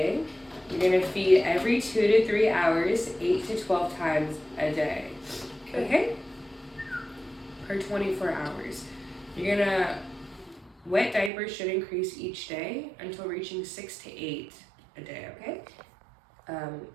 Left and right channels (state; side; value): drops out; left; at 11.3 s